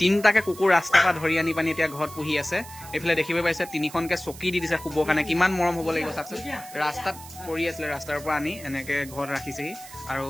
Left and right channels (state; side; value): noise; right; hiss, 16 dB below the sound